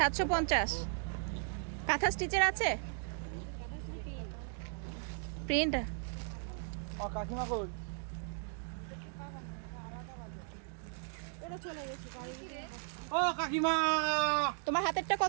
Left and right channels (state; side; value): silent; left; 53 dB below the other